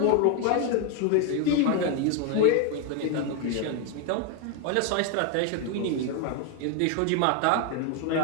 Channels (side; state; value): both; different; correlation 0.01